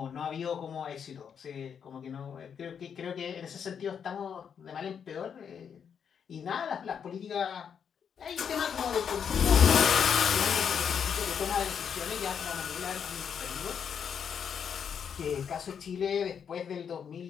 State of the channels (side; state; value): right; quieter; 7.4 dB